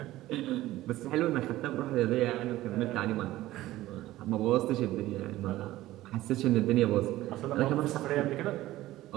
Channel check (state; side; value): quieter; left; 16.0 dB